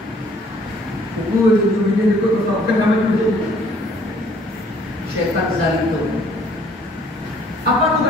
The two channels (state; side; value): normal; both; correlation 0.60